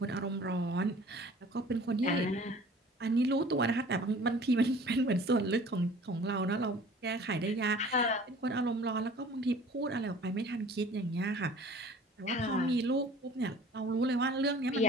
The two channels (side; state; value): both; normal; correlation 0.47